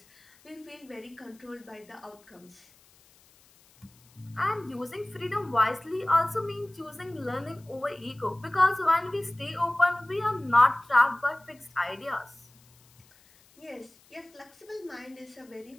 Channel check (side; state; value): left; noise; hiss, 29 dB below the sound